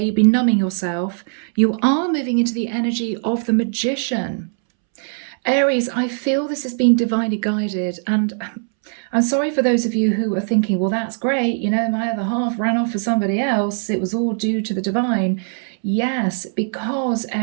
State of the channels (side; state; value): left; silent; 66 dB below the other